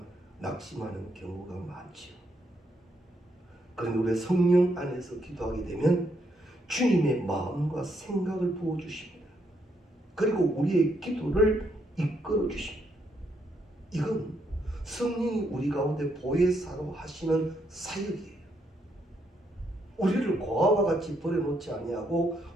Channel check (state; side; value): normal; both; correlation 0.76